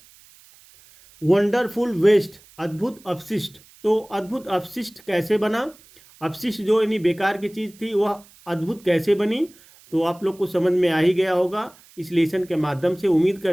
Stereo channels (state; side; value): noise; right; hiss, 26 dB below the sound